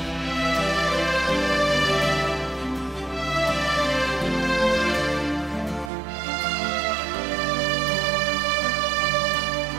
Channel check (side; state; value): left; drops out; at 5.9 s